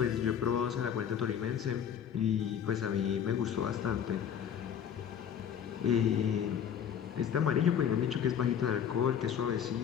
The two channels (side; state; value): right; quieter; 8.5 dB